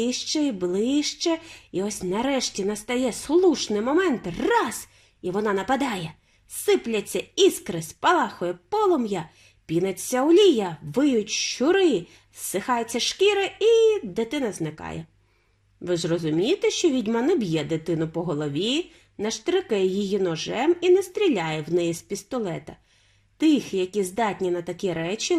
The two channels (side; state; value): both; identical; correlation 1.00